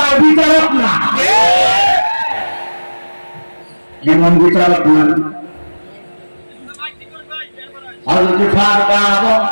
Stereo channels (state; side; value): inverted; both; correlation -1.00